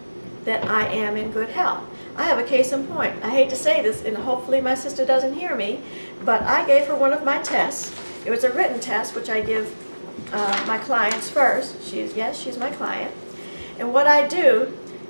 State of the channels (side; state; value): both; inverted; correlation -1.00